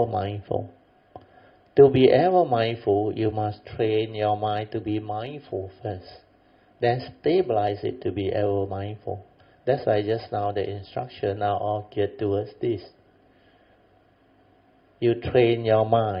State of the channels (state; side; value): identical; both; correlation 1.00